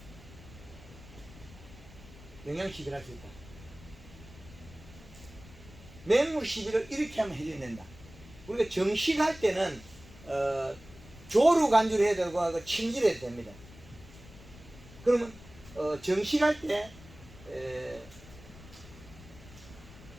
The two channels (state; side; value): noise; left; rumble, 19 dB below the sound